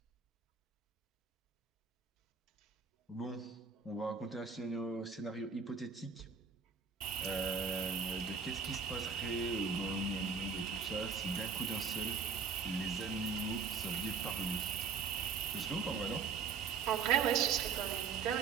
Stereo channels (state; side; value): quieter; left; 5.7 dB